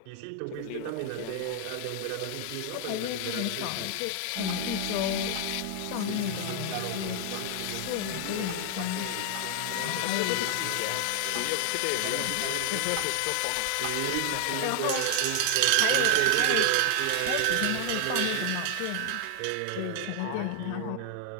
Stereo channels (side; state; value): both; different; correlation 0.00